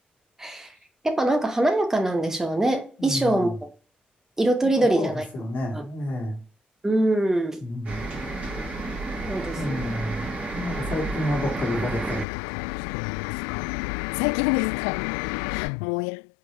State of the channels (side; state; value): right; drops out; at 12.2 s